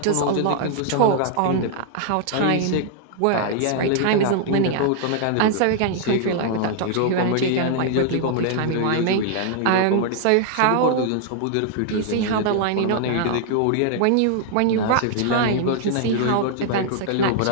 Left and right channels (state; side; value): different; both; correlation 0.00